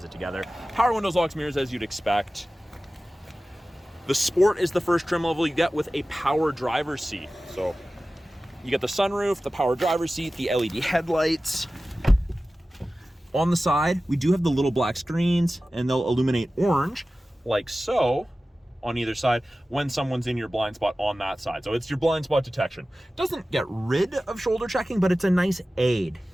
it together. Power windows, locks, mirrors, as you'd expect. The Sport is the first trim level you get with a power driver's seat. So you get the sunroof, the power driver's seat, the LED headlights. On the side, we do have the little black screens, and they'll illuminate orange, like so, on either side when someone's in your blind spot on that side. So it's your blind spot detection. Doesn't get rid of shoulder checking, but it's a nice aid.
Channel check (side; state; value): both; normal; correlation 0.96